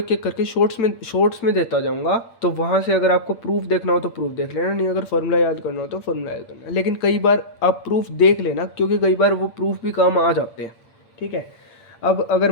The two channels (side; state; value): right; late; 8.7 ms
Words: एक करके शॉर्ट्स में देता जाऊंगा, तो वहाँ से अगर आपको प्रूफ देखना हो तो प्रूफ देख लेना, नहीं अगर फॉर्मूला याद करना हो तो फॉर्मूला याद करना। लेकिन कई बार आप प्रूफ देख लेना, क्योंकि कई बार वो प्रूफ भी काम आ जाते हैं। ठीक है, अब अगर